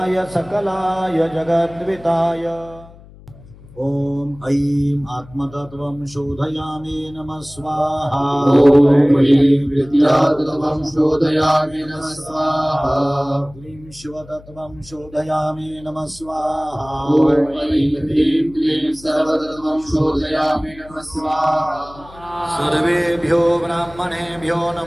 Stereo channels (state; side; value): noise; left; hum, 21 dB below the sound